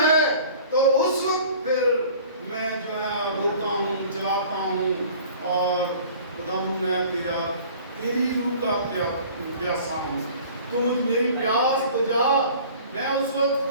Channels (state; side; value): inverted; both; correlation -0.47